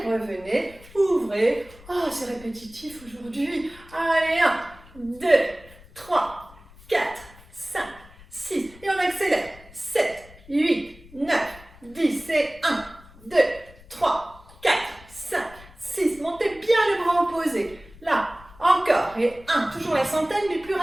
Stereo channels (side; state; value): left; noise; rumble, 22 dB below the sound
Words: revenez, ouvrez. Oh, c'est répétitif aujourd'hui. Allez, 1, 2, 3, 4, 5, 6, et on accélère. 7, 8, 9, 10, et 1, 2, 3, 4, 5, 6. Montez bien le bras opposé. Là, encore, et 1, toujours la centaine, mais plus